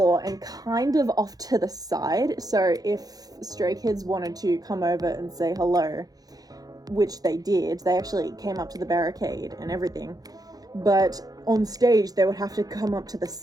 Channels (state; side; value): late; left; 0.18 ms